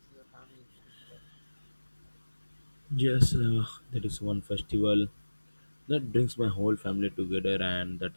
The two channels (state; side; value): inverted; both; correlation -1.00